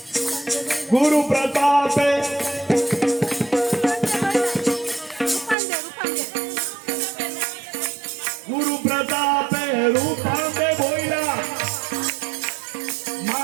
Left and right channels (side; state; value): left; drops out; at 5.6 s